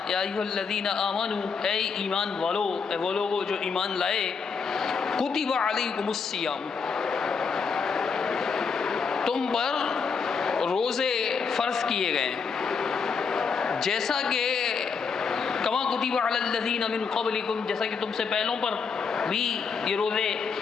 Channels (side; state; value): right; quieter; 5.6 dB